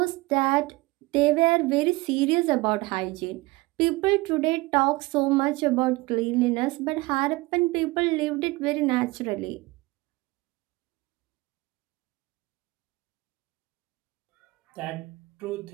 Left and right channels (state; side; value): quieter; left; 22.4 dB